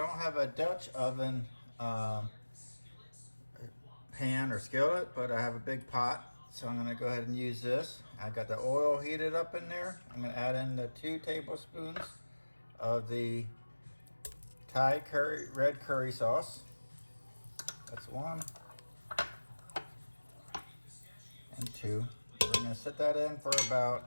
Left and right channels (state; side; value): inverted; both; correlation -1.00